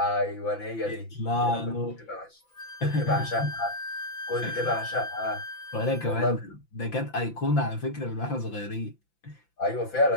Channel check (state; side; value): late; right; 5.9 ms